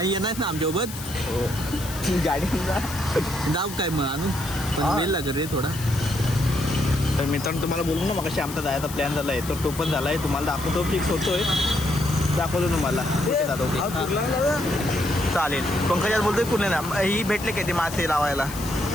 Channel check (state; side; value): noise; left; hiss, 12 dB below the sound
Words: येणार ना आमच्यासोबत. हो गाडीला जाऊ काय मग आम्ही वेळ लागेल रे थोडा. तर मित्रांनो तुम्हाला बोलू ना मग आमचा जायचा प्लॅन झाला आहे, तर तो पण झाला आहे. तुम्हाला दाखवतो, फिक्स होतोय, दाखवतो तुम्हाला. चालेल. पंकजात बोलतोय कुठले ना ही भेटले काय ते मासे लावायला.